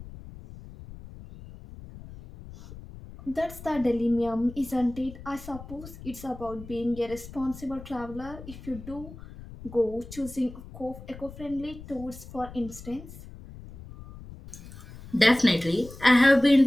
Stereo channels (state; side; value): noise; left; rumble, 15 dB below the sound